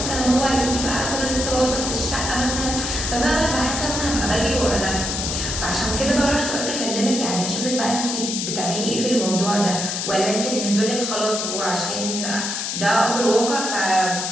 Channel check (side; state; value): left; noise; hiss, 3 dB below the sound